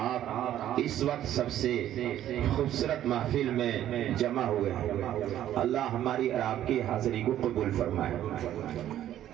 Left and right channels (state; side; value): quieter; left; 11.9 dB